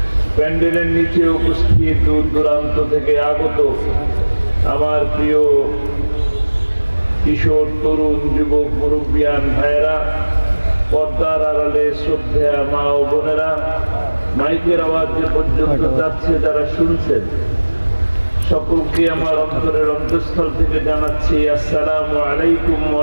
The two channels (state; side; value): inverted; both; correlation -1.00